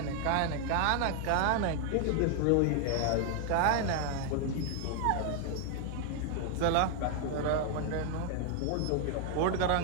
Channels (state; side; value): different; both; correlation 0.00